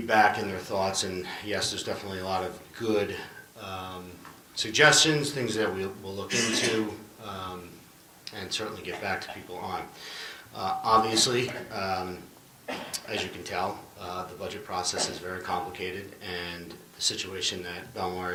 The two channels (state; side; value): identical; both; correlation 1.00